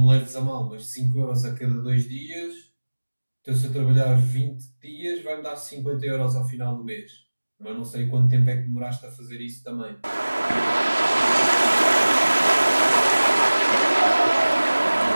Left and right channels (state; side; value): inverted; both; correlation -1.00